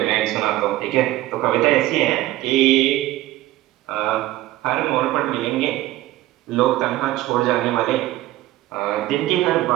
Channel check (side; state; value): left; quieter; 15.8 dB